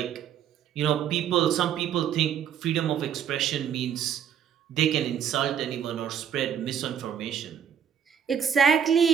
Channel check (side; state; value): left; quieter; 8.6 dB